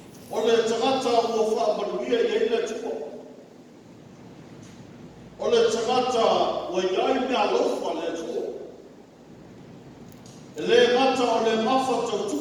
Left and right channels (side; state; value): both; identical; correlation 1.00